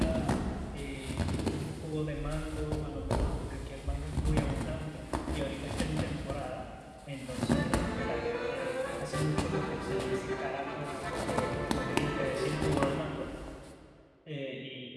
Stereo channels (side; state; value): both; identical; correlation 1.00